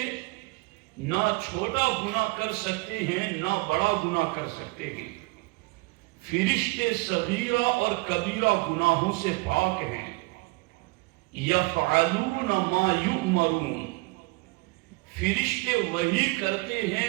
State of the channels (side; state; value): left; quieter; 25.8 dB